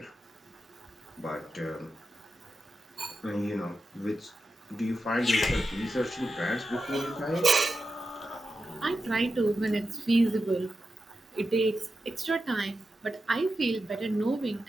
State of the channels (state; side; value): normal; both; correlation 0.90